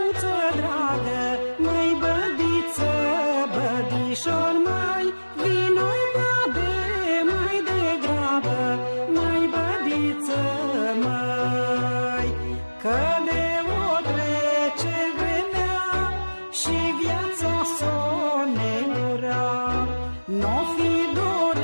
dragă, mai bădiță, bădișor, mai vino bade mai degrabă, mai bădiță, mai că de o trece vremea și viața s-o negura, n-o fi dor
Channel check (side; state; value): both; inverted; correlation -1.00